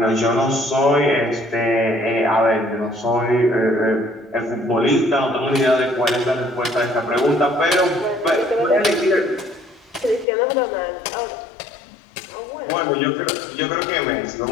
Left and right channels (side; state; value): right; drops out; at 10.2 s